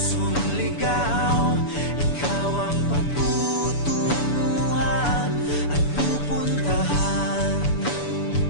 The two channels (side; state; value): right; late; 7.0 ms